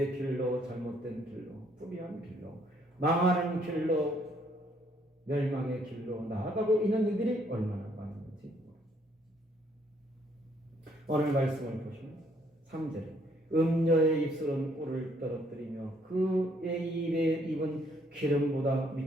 길로 잘못된 길로 불의한 길로 망하는 길로 멸망의 길로 나아가고 있는 이들이 얼마나 많은지 오늘 말씀을 보시면 3절에 음녀의 입술은 꿀을 떨어뜨리며 그의 입에 입은 기름보다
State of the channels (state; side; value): normal; both; correlation 0.68